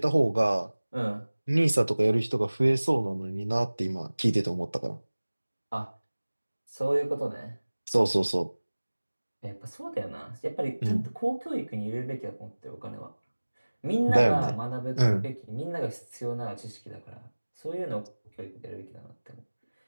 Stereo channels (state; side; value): inverted; both; correlation -1.00